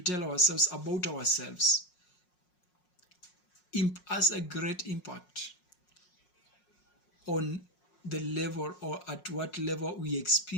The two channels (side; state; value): right; late; 5.5 ms